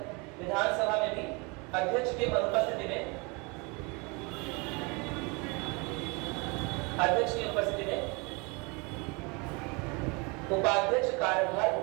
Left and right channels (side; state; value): left; quieter; 29.1 dB